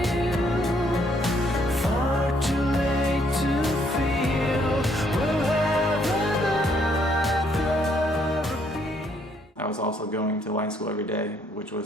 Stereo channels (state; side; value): normal; both; correlation 0.69